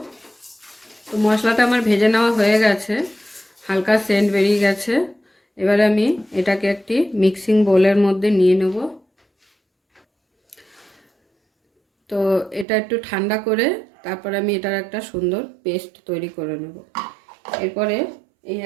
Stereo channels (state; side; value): drops out; left; at 12.7 s